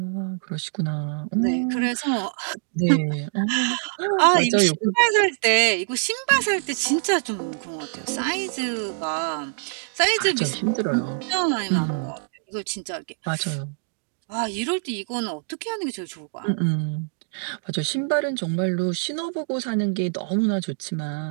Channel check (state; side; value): silent; left; digital silence